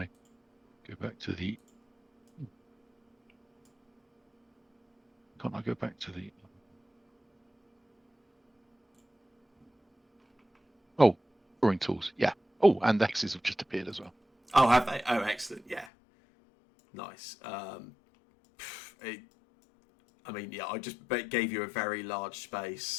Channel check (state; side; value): drops out; right; at 15.9 s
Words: go back to the. Can't I go back to the? Oh, drawing tools. Yeah. Oh, and the hexes have just appeared as well. Oh, have they? Oh, excellent. Yeah. Nice. I mean, yeah, I just gave you a very large